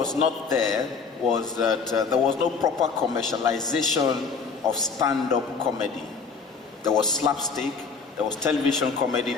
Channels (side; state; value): right; quieter; 5.2 dB